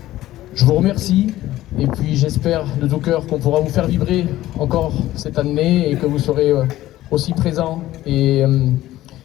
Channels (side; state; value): right; quieter; 15.1 dB